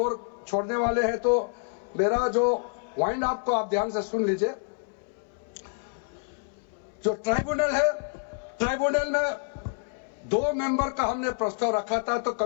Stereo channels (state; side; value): silent; right; 59 dB below the other